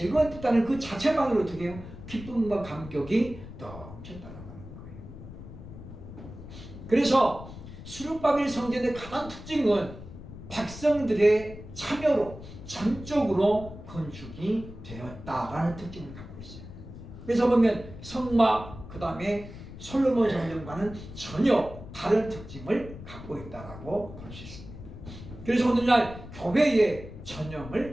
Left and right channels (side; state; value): left; noise; rumble, 14 dB below the sound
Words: 그 자체만으로 어떻게 해요? 기쁨과 감격이 넘쳤다는 거예요. 그래서 스룹바벨 성전의 가장 특징은 백성들의 참여로 전적으로 건축이 되었다라는 특징을 갖고 있어요. 그래서 보면 성막, 그 다음에 솔로몬 성전과는 전혀 다른 특징을 갖고 있다라고 볼 수 있습니다. 그래서 오늘날 교회의